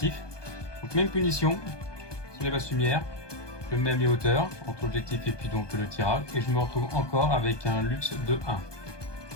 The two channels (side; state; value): right; late; 1.2 ms